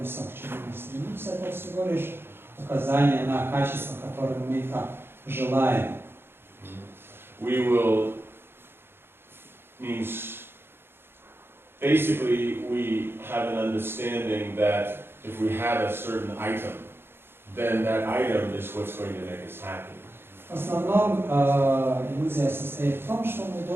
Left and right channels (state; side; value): late; left; 0.11 ms